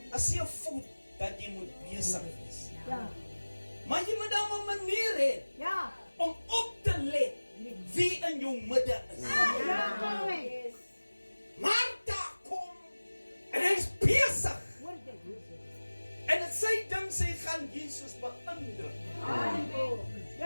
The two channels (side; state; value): both; inverted; correlation -1.00